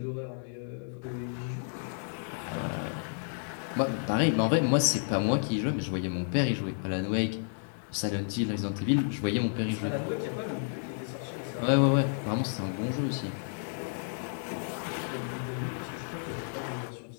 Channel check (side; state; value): right; silent; digital silence